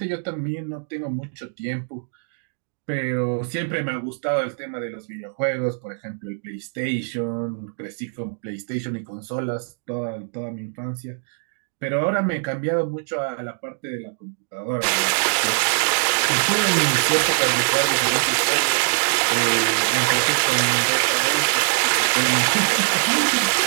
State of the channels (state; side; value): silent; left; digital silence